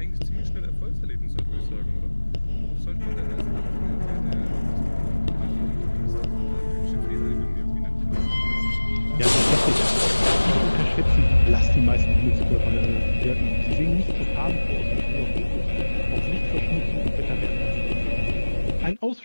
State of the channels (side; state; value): both; inverted; correlation -1.00